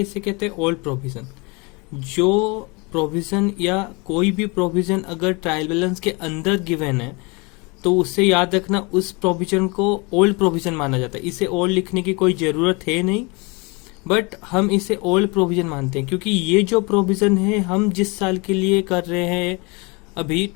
इसे कहते हैं ओल्ड प्रोविजन। जो प्रोविजन या कोई भी प्रोविजन अगर ट्रायल बैलेंस के अंदर गिवन है तो उससे याद रखना उस प्रोविजन को ओल्ड प्रोविजन माना जाता है। इसे ओल्ड लिखने की कोई जरूरत है नहीं, बट हम इसे ओल्ड प्रोविजन मानते हैं क्योंकि ये जो प्रोविजन है हम जिस साल के लिए कर रहे हैं अभी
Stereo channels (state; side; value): quieter; right; 28.5 dB